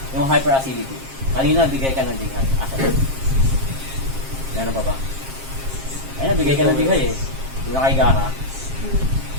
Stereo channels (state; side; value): late; left; 7.5 ms